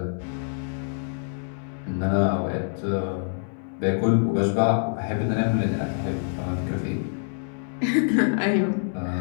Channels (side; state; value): right; silent; 61 dB below the other